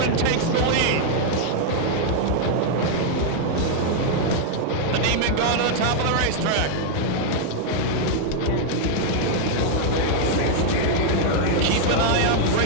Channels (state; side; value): different; both; correlation 0.00